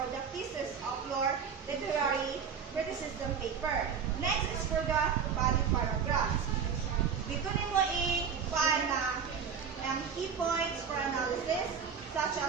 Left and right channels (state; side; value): quieter; left; 6.8 dB